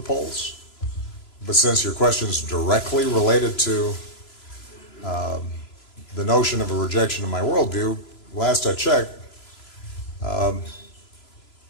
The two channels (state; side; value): late; right; 3.0 ms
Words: polls. But since your question is directly related to the notion of a rejection of my worldview, last I checked,